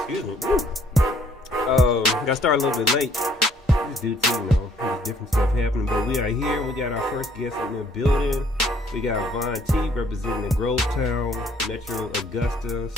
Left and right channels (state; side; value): normal; both; correlation 0.63